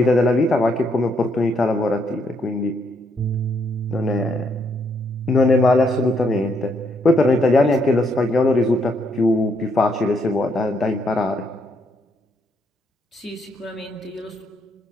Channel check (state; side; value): normal; both; correlation 0.74